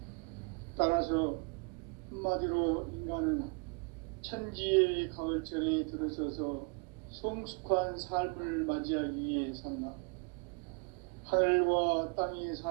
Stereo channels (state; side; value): quieter; left; 35.0 dB